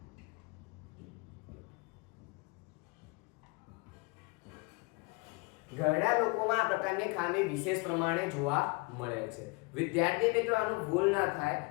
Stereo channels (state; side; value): quieter; right; 27.8 dB